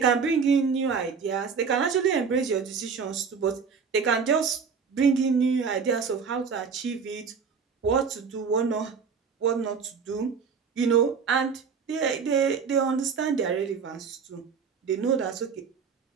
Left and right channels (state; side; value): quieter; left; 5.9 dB